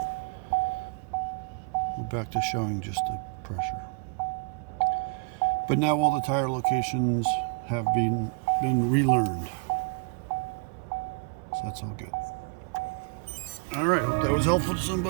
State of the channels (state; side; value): quieter; left; 34.9 dB